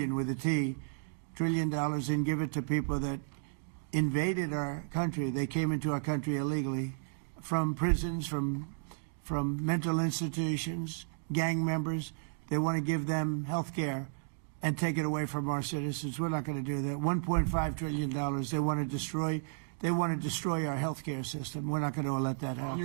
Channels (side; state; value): left; silent; digital silence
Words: with a T, $1 trillion, and give it to people that invaded our country. They came into our country illegally from prisons, from mental institutions, gang members. They want to give them health care and take it away from our citizens. We're not going to do that. $1.5 trillion. They want to destroy. They want to destroy our health care system. We're not going to let that happen.